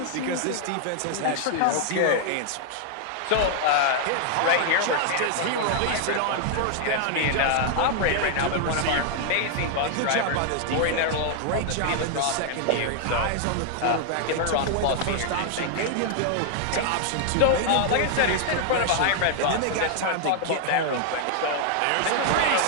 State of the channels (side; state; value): both; different; correlation 0.00